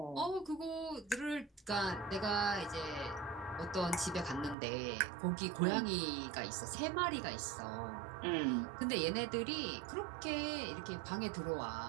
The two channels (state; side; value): drops out; left; at 4.5 s